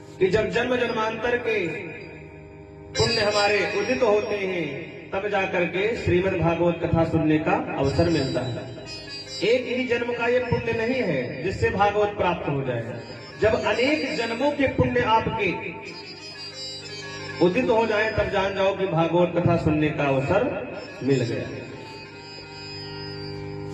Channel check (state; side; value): identical; both; correlation 1.00